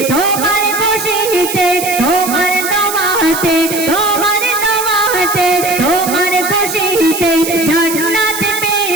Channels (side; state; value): right; noise; hiss, 6 dB below the sound